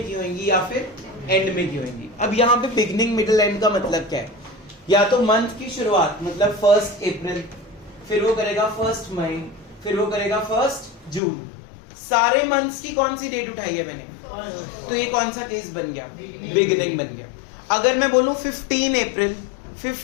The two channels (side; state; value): right; drops out; at 11.2 s